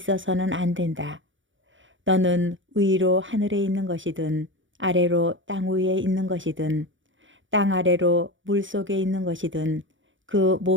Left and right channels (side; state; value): left; late; 0.56 ms